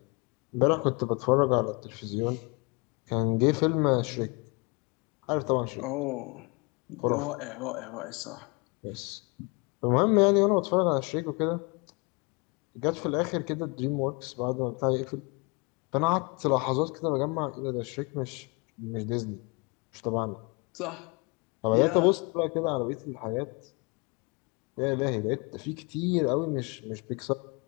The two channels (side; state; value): right; quieter; 30.0 dB